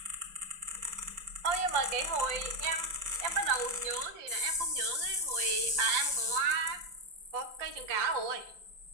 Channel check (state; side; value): late; left; 5.7 ms